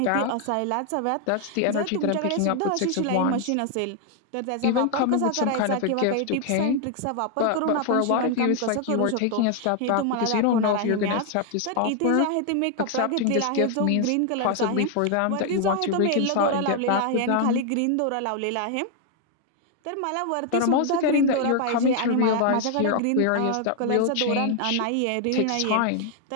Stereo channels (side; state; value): both; different; correlation 0.00